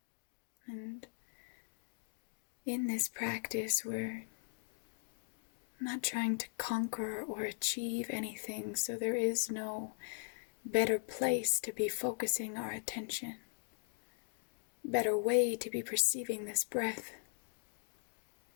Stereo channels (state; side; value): silent; right; digital silence